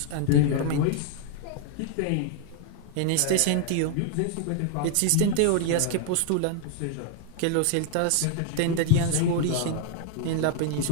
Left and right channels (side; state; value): both; different; correlation 0.00